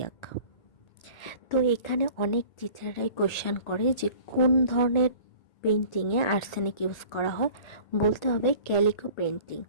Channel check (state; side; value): late; right; 1.4 ms